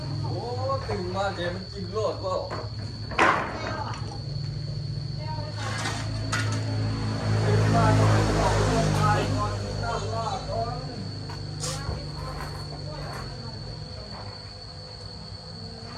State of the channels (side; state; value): both; identical; correlation 1.00